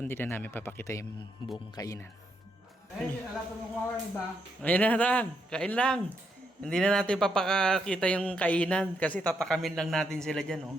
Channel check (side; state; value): both; normal; correlation 0.78